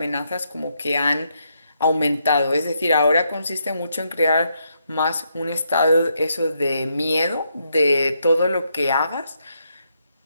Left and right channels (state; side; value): inverted; both; correlation -0.78